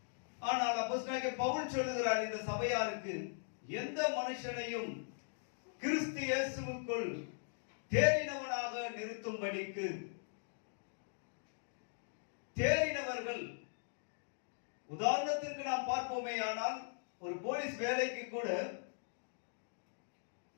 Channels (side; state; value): right; silent; digital silence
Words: ஆனால் அப்போஸ்தலனாகிய பவுல் சொல்லுகிறார் இந்த சபையாருக்கு, எந்த மனுஷனையும் கிறிஸ்து இயேசுவுக்குள் தேறினவனாக நிறுத்தும்படிக்கு. தேறினவர்கள் உதாரணத்திற்கு நாம் பார்ப்போமே, ஆனால் ஒரு போலீஸ் வேலைக்கு கூட